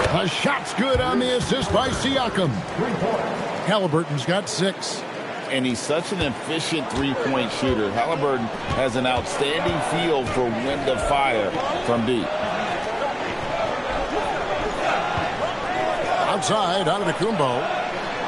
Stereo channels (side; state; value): both; identical; correlation 1.00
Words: The shot's good on the assist by Siakam. Halliburton's got 6. And he's such an efficient three-point shooter. Halliburton has an outstanding feel for when to fire from deep. outside, Antetokounmpo.